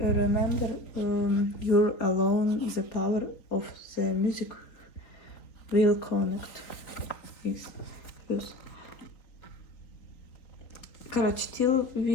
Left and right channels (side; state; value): right; late; 4.0 ms